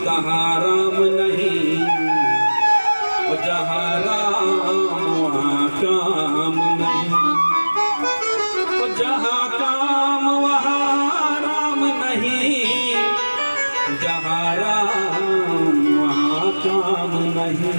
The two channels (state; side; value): inverted; both; correlation -1.00